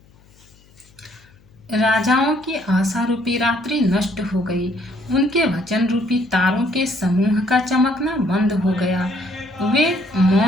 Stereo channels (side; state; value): left; noise; hum, 29 dB below the sound